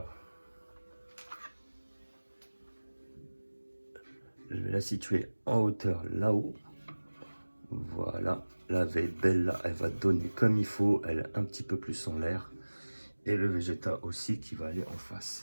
je vais la situer en hauteur là-haut. Voilà, la veille belle là, elle va donner comme il faut. Elle est un petit peu plus en l'air. Et le Vegeta aussi qui va aller en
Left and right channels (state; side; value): inverted; both; correlation -1.00